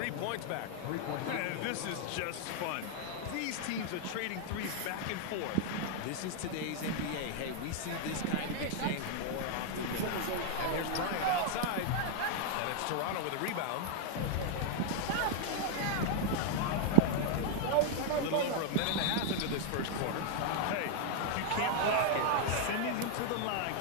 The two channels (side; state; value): both; different; correlation 0.00